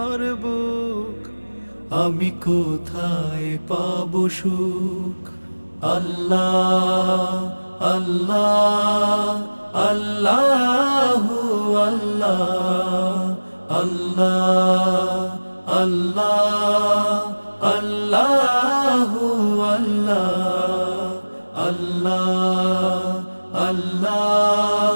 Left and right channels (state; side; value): inverted; both; correlation -1.00